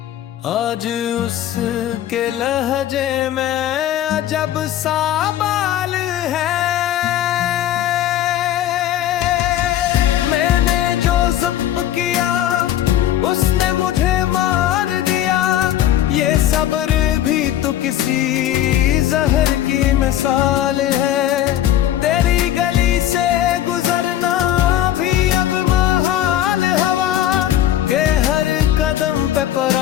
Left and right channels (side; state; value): right; quieter; 12.0 dB